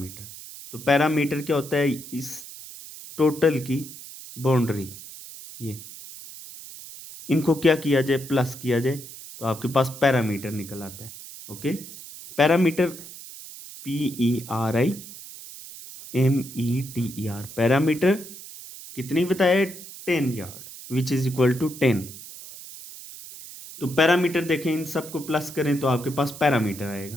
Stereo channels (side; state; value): right; noise; hiss, 14 dB below the sound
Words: तो पैरामीटर क्या होता है, इस टोटल की बाउंड्री, ये इनको क्या किया जाए, प्लस किया जाए, तो आपके पास पैरामीटर निकल आता है। ओके, पैरामीटर PERIMETER, पैरामीटर कितनी बताया, 10 yard, which is equal to 10। तो पैरामीटर देखें, इन सबको प्लस करें तो आपके पास पैरामीटर